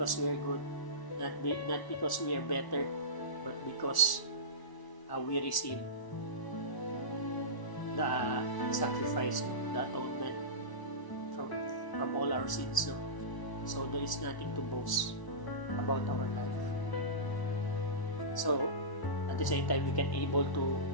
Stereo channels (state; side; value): late; right; 1.0 ms